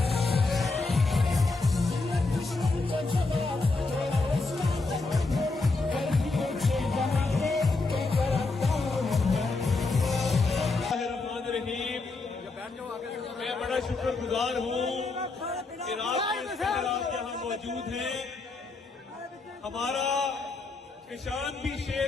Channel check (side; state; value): right; quieter; 3.6 dB